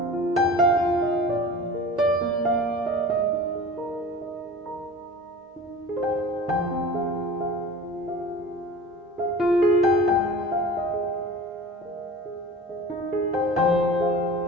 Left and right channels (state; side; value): normal; both; correlation 0.39